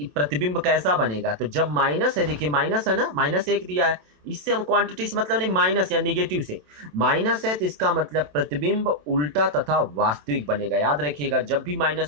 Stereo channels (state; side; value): late; left; 27 ms